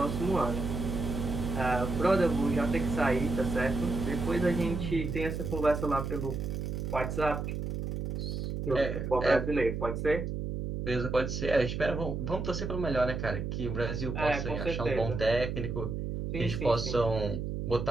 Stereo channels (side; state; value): right; noise; hum, 3 dB below the sound